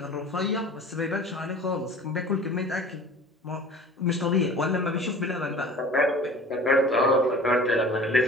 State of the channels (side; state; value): both; normal; correlation 0.43